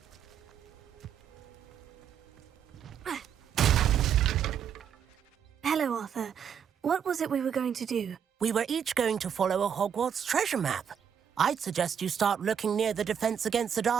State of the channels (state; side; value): quieter; left; 8.2 dB